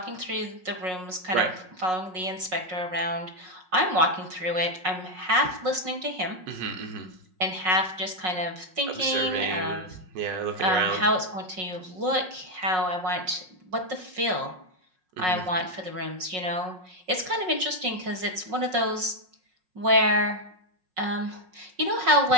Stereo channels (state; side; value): late; left; 5.5 ms